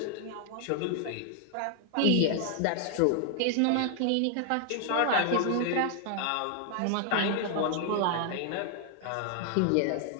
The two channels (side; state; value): both; different; correlation 0.00